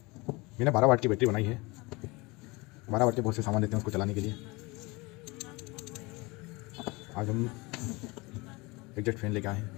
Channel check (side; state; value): right; quieter; 24.8 dB